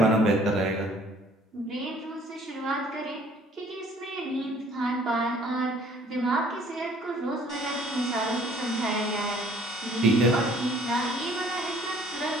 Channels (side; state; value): both; normal; correlation 0.57